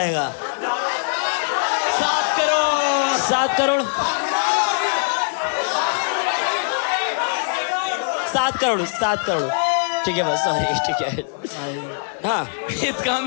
7 करोड़। 7 करोड़ 7 करोड़ ठीक है बस, सॉरी ठीक है। हाँ इसका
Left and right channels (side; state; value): right; silent; 57 dB below the other